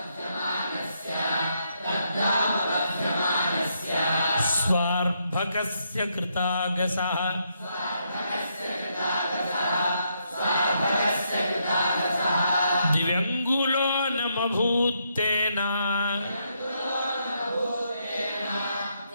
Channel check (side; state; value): both; inverted; correlation -0.77